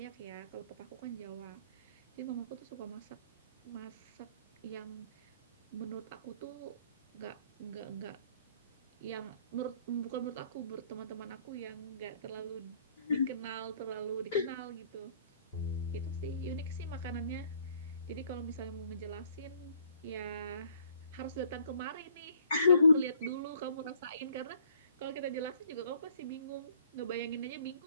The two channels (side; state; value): both; inverted; correlation -0.60